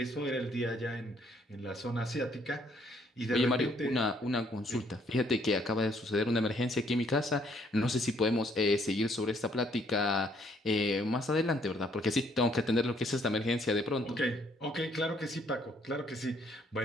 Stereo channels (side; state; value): both; normal; correlation 0.66